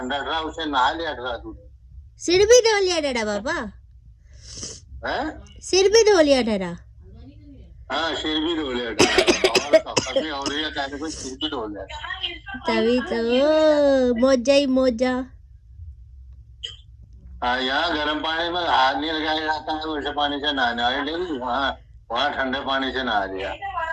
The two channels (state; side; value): identical; both; correlation 1.00